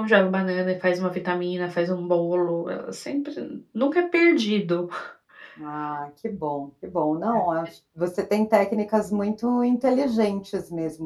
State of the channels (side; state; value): both; identical; correlation 1.00